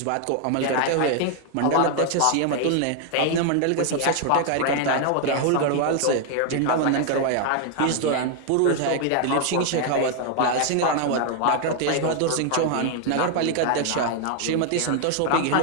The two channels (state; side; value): different; both; correlation 0.00